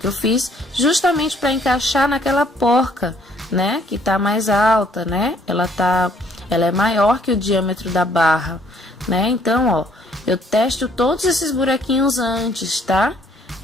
eu fiz, justamente para encaixar naquela porca, né? Que tá mais alta, né? Ela é maior que o diâmetro da barra, né? Então, ó, eu testo todos esses buraquinhos antes, tá?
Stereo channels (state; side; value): normal; both; correlation 0.63